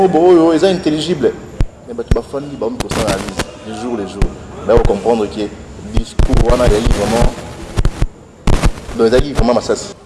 ils sont intelligibles. Mais tu vas faire les jours, les jours. Là, on va comprendre que le discour, on a vraiment. Donc, il y a vraiment massacre.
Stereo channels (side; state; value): both; identical; correlation 1.00